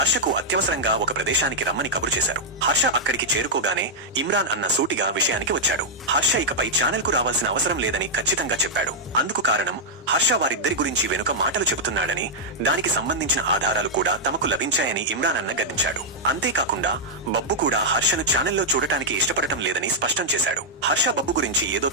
అత్యవసరంగా ఒక ప్రదేశానికి రమ్మని కబురు చేశారు. హర్ష అక్కడికి చేరుకోగానే ఇమ్రాన్ అన్న సూటిగా విషయానికి వచ్చాడు. హర్ష ఇకపై ఛానల్ కు రావాల్సిన అవసరం లేదని ఖచ్చితంగా చెప్పాడు. అందుకు కారణం హర్ష వారిద్దరి గురించి వెనుక మాటలు చెబుతున్నాడని, దానికి సంబంధించిన ఆధారాలు కూడా తమకు లభించాయని ఇమ్రాన్ అన్న గద్దించాడు. అంతేకాకుండా బబ్బు కూడా హర్షను ఛానల్లో చూడటానికి ఇష్టపడటం లేదని స్పష్టం చేశాడు. హర్ష బబ్బు గురించి ఏదో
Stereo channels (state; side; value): normal; both; correlation -0.06